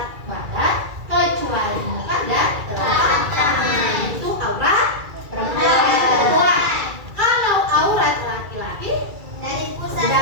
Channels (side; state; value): left; late; 2.3 ms